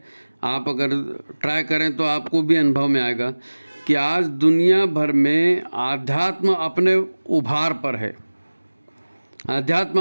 आप अगर ट्राई करें तो आपको भी अनुभव में आएगा कि आज दुनिया भर में आध्यात्म अपने उभार पर है,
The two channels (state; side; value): inverted; both; correlation -1.00